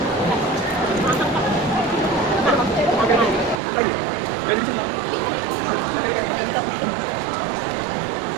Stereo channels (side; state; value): left; drops out; at 3.6 s